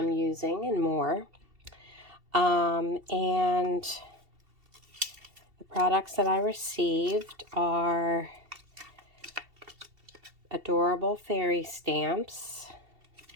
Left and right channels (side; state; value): left; late; 2.7 ms